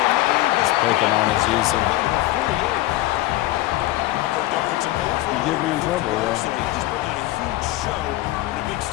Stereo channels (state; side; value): quieter; right; 16.7 dB